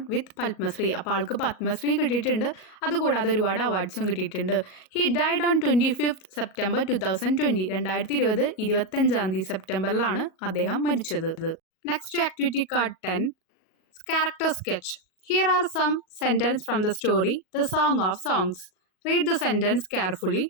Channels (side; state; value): right; late; 38 ms